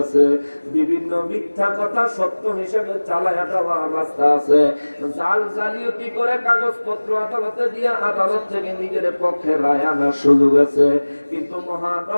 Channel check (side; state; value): both; inverted; correlation -1.00